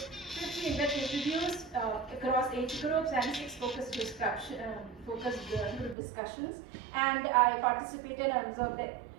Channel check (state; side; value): drops out; left; at 6.0 s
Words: in-depth interviews across age groups and 6 focus group discussions, and I participated and observed the